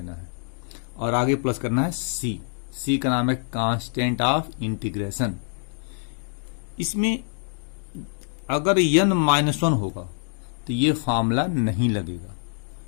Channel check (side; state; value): right; silent; 60 dB below the other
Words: है और आगे प्लस करना है c का नाम है कांस्टेंट ऑफ इंटीग्रेशन। इसमें अगर n -1 होगा तो ये फॉर्मूला नहीं लगेगा।